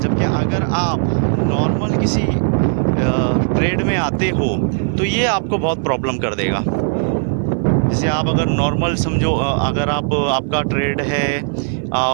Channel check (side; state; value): left; silent; 59 dB below the other